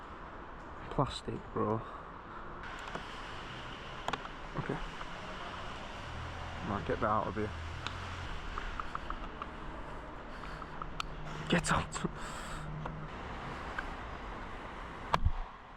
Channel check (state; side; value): identical; both; correlation 1.00